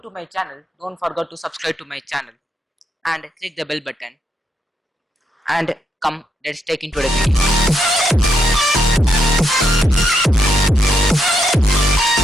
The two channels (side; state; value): both; normal; correlation 0.79